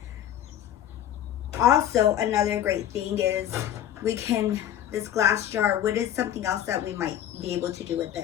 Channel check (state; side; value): quieter; right; 11.0 dB